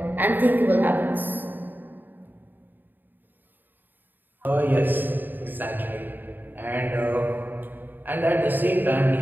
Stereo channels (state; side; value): late; left; 0.091 ms